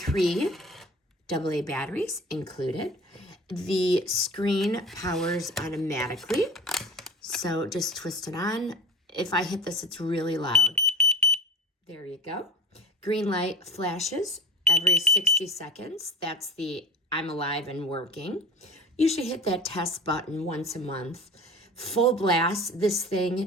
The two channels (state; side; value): normal; both; correlation 0.35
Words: AA batteries included. The screen powers automatically, so just twist it on. If I hit this, it's really loud. There you go. Green light flashes every 60 seconds. That's the I'm alive and working. You should hit that test button once a month. Full blast, this